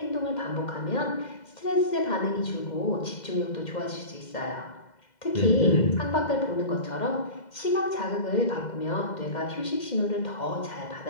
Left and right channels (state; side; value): late; right; 2.1 ms